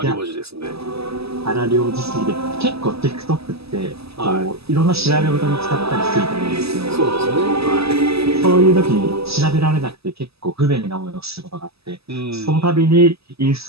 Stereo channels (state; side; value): late; left; 0.78 ms